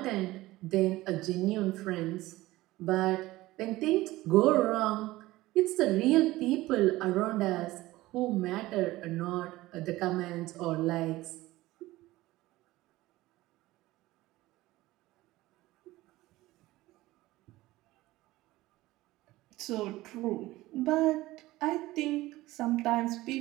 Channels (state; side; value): quieter; left; 18.0 dB